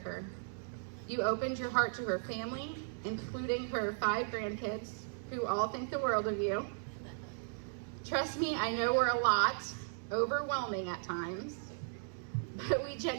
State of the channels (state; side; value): silent; left; digital silence